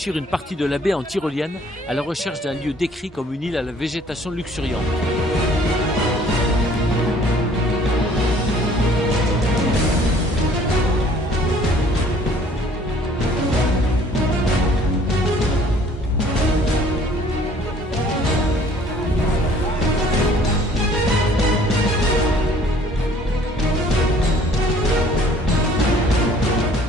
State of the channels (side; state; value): both; normal; correlation 0.56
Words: une partie de la baie en tyrolienne à la recherche d'un lieu décrit comme une île à la végétation luxuriante.